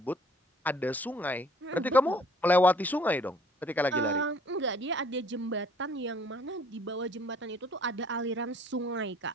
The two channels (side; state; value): both; normal; correlation 0.57